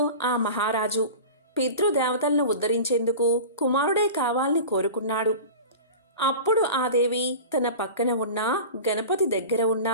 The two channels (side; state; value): both; inverted; correlation -0.34